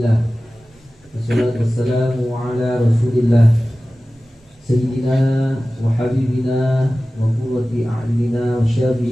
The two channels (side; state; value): both; normal; correlation 0.96